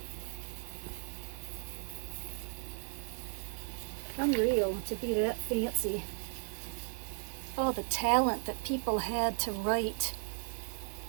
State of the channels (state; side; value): silent; left; 54 dB below the other